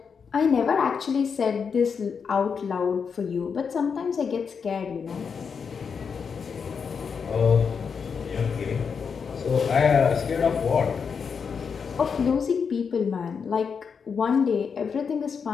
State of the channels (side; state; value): right; quieter; 6.1 dB